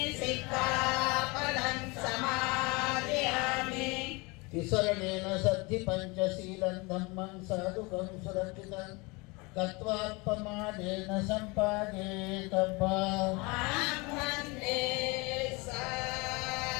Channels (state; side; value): quieter; right; 26.6 dB